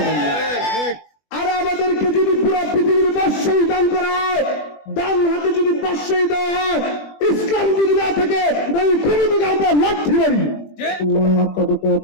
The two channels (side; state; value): right; late; 20 ms